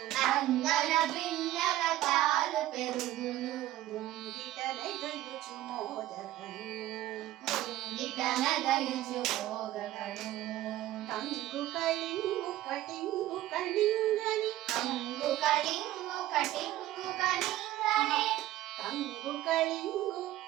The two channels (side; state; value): left; quieter; 14.8 dB